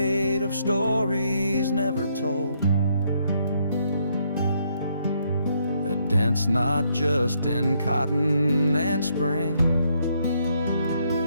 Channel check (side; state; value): both; inverted; correlation -0.73